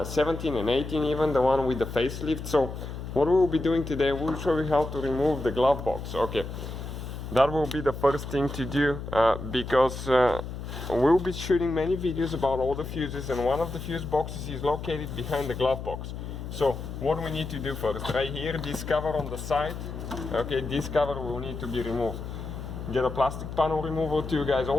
and 18 even, the one with the facelift. So what we'll be doing today, we'll show you how to remove the glove box. Okay, that will be the first thing to do because we'll be shooting many videos about all the fuses, and one of the fuse boxes is located behind the glove box. So what we need to do first, right here, this cover on the side, okay, this cover will need to be removed. Get a plastic panel remover too, guys.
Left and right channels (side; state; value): left; noise; hum, 8 dB below the sound